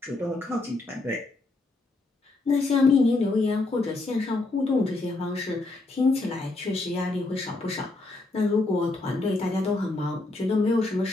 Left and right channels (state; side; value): quieter; right; 3.1 dB